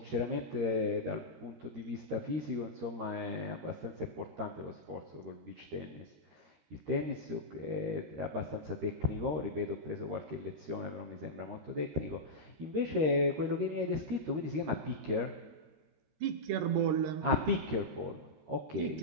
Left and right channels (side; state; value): left; late; 13 ms